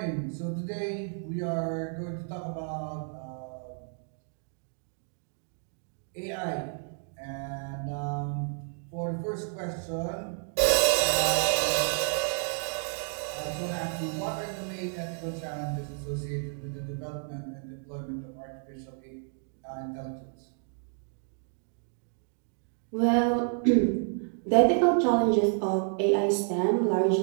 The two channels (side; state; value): left; silent; 58 dB below the other